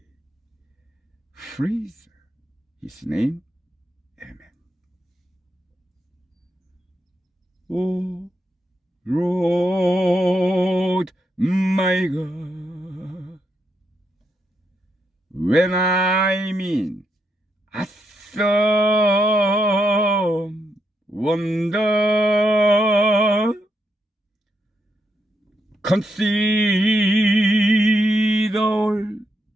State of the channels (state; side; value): normal; both; correlation 0.80